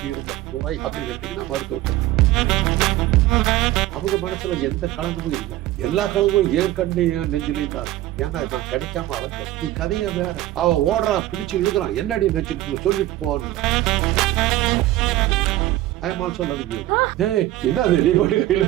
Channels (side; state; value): left; quieter; 15.4 dB